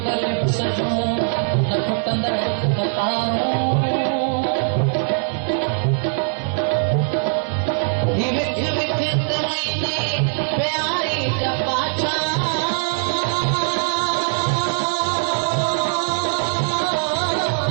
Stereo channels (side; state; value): left; silent; digital silence